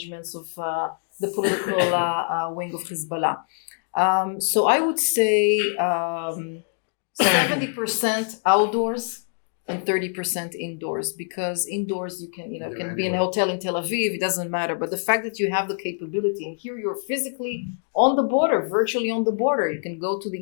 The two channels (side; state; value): right; silent; digital silence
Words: of the political wing of Hezbollah. So I would say 70% outdoors and 30% indoors, because indoors you can be in a hotel in Tel Aviv, it doesn't matter. But the fact that you have the capability, and here you're physically on the border, virtually on the border, you can go to